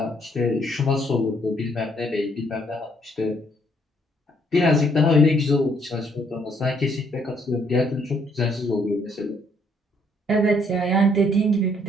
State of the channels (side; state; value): both; normal; correlation 0.68